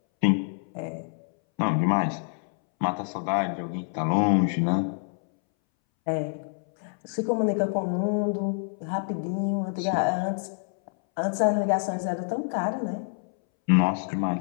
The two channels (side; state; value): right; silent; 60 dB below the other